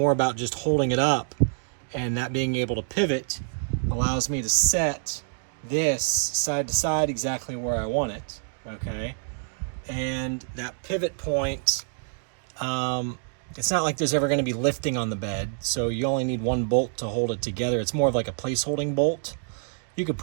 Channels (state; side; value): silent; left; digital silence